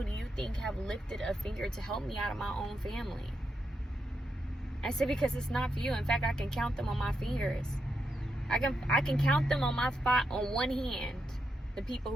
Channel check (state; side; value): normal; both; correlation 0.84